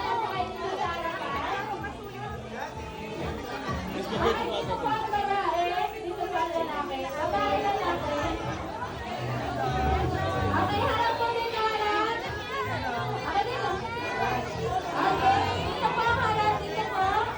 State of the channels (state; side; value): identical; both; correlation 1.00